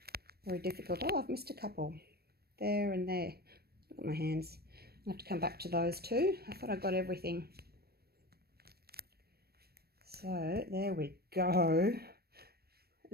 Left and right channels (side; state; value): left; late; 0.46 ms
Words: very difficult. Oh, I've missed a couple there and there. Look at my hands. I'll have to come back to those too. I thought I got everything. So there we go.